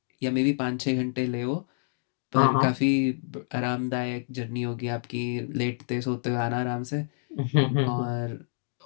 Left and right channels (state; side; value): silent; right; 59 dB below the other